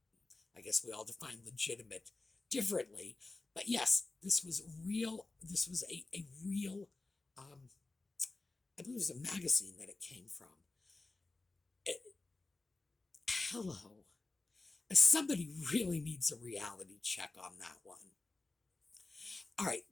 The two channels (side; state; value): right; quieter; 3.3 dB